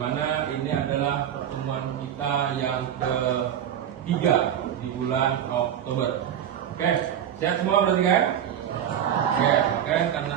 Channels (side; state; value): left; quieter; 9.8 dB